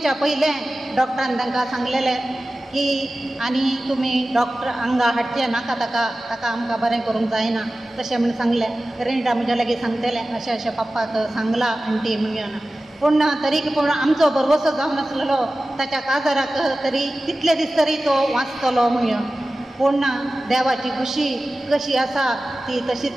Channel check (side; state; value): both; normal; correlation 0.96